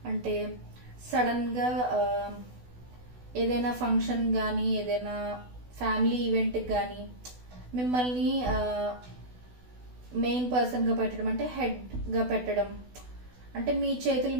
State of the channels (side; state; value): left; late; 16 ms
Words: అంటే సడన్గా ఏదైనా ఫంక్షన్ కానీ ఏదైనా ఫ్యామిలీ ఈవెంట్కి కానీ మిమ్మల్ని మెయిన్ పర్సన్గా పెట్టడం, అంటే హెడ్గా పెట్టడం, అంటే మీ చేతుల